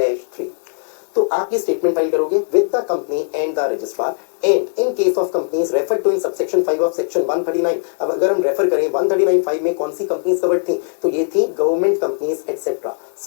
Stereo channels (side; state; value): right; silent; digital silence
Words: तो आप ये स्टेटमेंट फाइल करोगे with the company and the registrar and in case of companies refer to in subsection 5 of section 139। अब अगर हम रेफर करें 139(5) में कौन सी कंपनीज कवर्ड थी, तो ये थी government companies etcetera.